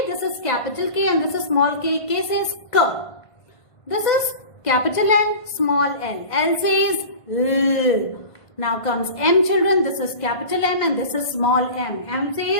This is capital K and this is small k. K says K. This is capital L, small l. L says L. Now comes M, children. This is capital M and this is small m. M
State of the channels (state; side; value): late; right; 1.5 ms